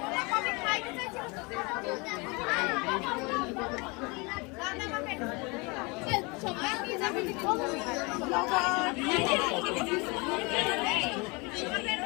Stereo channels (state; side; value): quieter; right; 28.0 dB